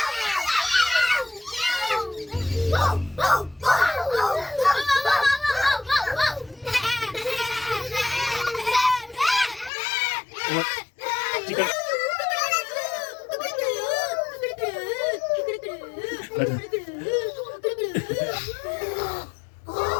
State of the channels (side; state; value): right; drops out; at 9.7 s